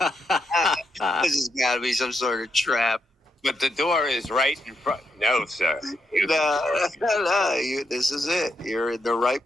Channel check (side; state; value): both; normal; correlation 0.81